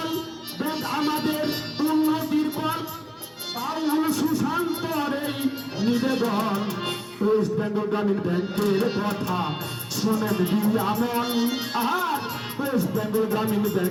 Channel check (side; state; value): both; identical; correlation 1.00